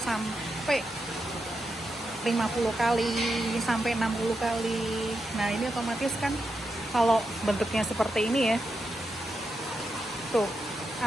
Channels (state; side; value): normal; both; correlation 0.86